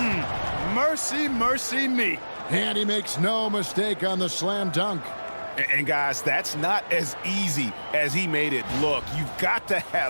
Mercy, mercy me. And he makes no mistake on the slam dunk. And guys, that's not as easy as he made it look. You've got to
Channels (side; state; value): both; inverted; correlation -1.00